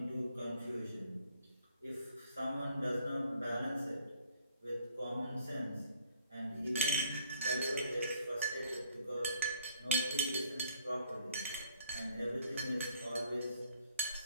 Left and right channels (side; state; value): both; inverted; correlation -0.58